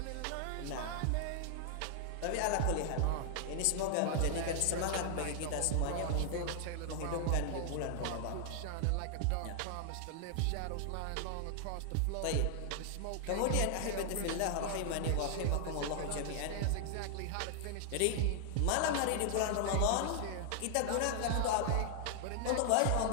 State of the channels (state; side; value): different; both; correlation 0.00